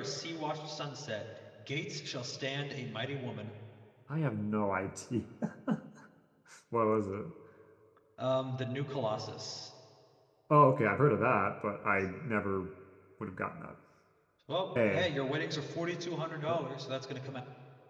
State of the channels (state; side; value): identical; both; correlation 1.00